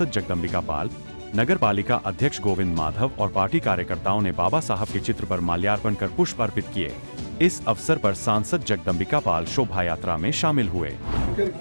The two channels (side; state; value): both; inverted; correlation -1.00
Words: जगदंबिका पाल, नगर पालिका अध्यक्ष गोविंद माधव और पार्टी कार्यकर्ताओं ने बाबा साहब के चित्र पर माल्यार्पण कर पुष्प अर्पित किए। इस अवसर पर सांसद जगदंबिका पाल शोभा यात्रा में शामिल हुए।